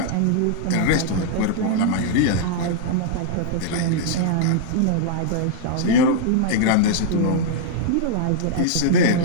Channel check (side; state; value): both; different; correlation -0.01